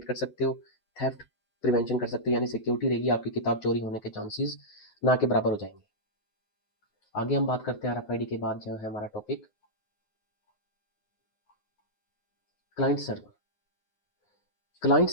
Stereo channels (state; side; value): late; right; 9.5 ms